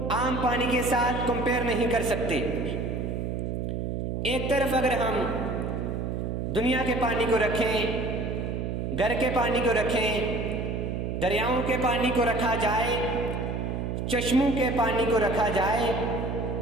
عام پانی کے ساتھ کمپیئر نہیں کر سکتے۔ ایک طرف اگر ہم دنیا کے پانی کو رکھیں، گھر کے پانی کو رکھیں، دریاؤں کے پانی کو رکھا جائے، چشموں کے پانی کو رکھا جائے،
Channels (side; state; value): right; noise; hum, 2 dB below the sound